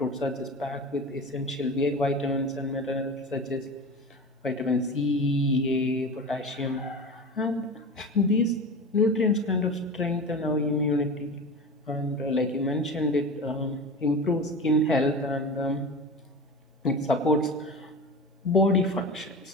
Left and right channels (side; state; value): both; normal; correlation 0.31